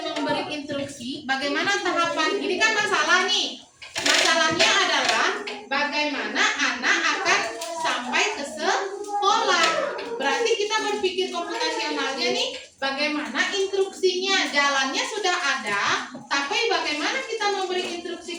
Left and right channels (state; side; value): identical; both; correlation 1.00